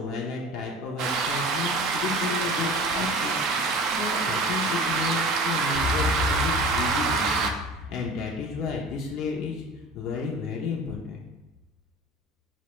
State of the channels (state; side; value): normal; both; correlation 0.39